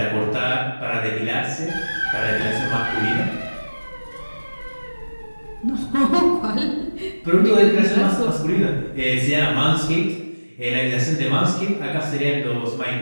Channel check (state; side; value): inverted; both; correlation -1.00